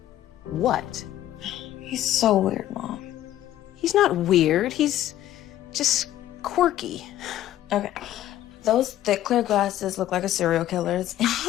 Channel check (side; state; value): right; quieter; 13.1 dB